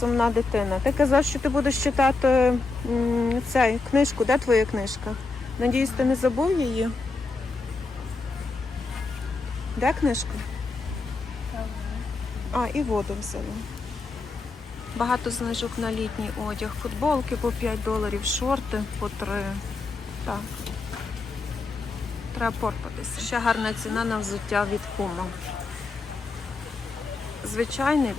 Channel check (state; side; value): quieter; right; 3.8 dB